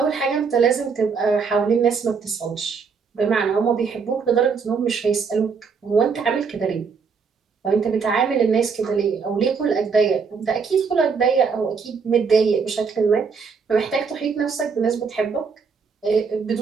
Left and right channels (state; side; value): quieter; left; 5.5 dB